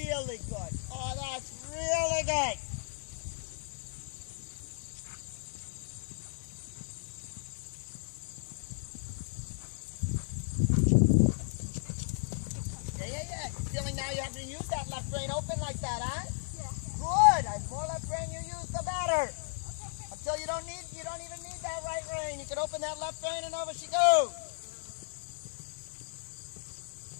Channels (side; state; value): right; silent; 55 dB below the other